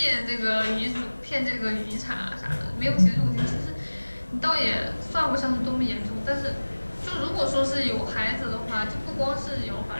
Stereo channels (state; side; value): inverted; both; correlation -1.00